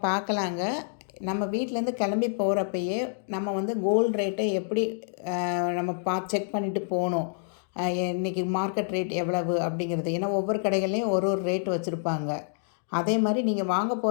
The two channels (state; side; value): silent; right; digital silence